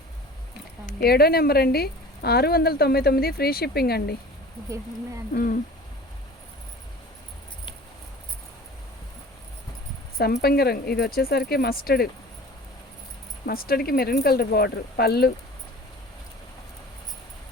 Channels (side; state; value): both; normal; correlation 0.42